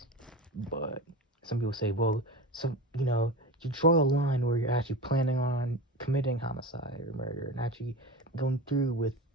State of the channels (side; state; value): both; normal; correlation 0.27